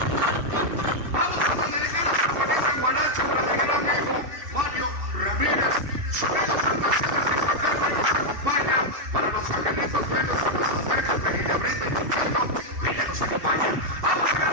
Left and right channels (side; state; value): left; late; 2.7 ms